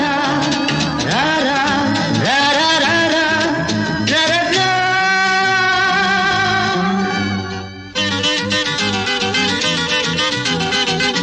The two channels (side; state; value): both; identical; correlation 1.00